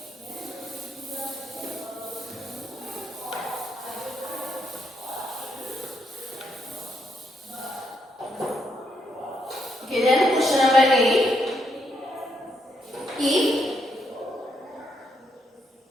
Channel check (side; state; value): both; normal; correlation 0.78